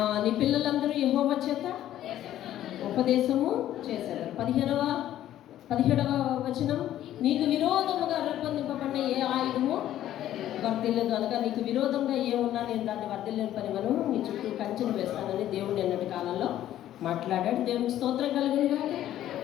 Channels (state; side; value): quieter; right; 12.5 dB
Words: నీ పిల్లలందరూ యెహోవా చేత ఉపదేశము చేశారు. 17వ వచనం. నీకు విరోధముగా రూపొందింపబడిన ఏ ఆయుధము వర్ధిల్లదు. అనగా నీకు విరోధంగా ఏమున్నా నేను దాన్ని వర్ధిల్లని పనివను నీ చుట్టూ కంచెను వేస్తానని దేవుడు నిన్నటి కాలంలో మాట్లాడాడు. దేవునికి స్తోత్రం కలుగునుగా.